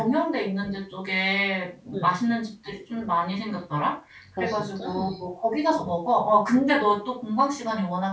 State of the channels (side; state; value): both; identical; correlation 1.00